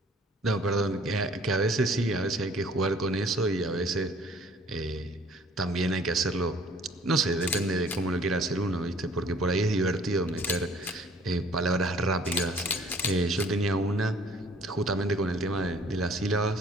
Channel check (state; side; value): normal; both; correlation 0.55